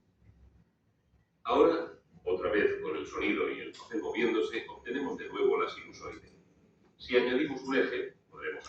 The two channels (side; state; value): both; identical; correlation 1.00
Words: Ahora, otra vez con el sonido y el papel moviéndose, obtenemos de nuevo la sinusoide. Si añadimos un eje, podremos